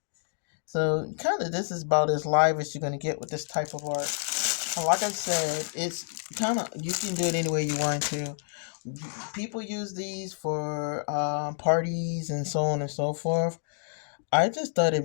So kind of this is about as live as you're gonna get with this type of art. Like I said, it's kind of, you can do it any way you want to. People use these for parties and so on and so forth. I just thought it'd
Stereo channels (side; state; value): right; silent; digital silence